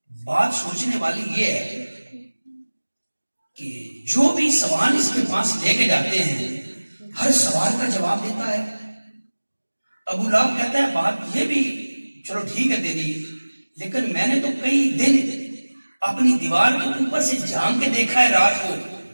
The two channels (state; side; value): inverted; both; correlation -1.00